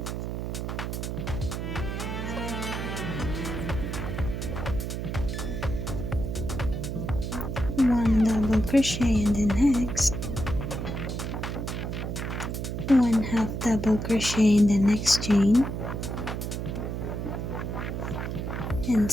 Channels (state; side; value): noise; right; hum, 4 dB below the sound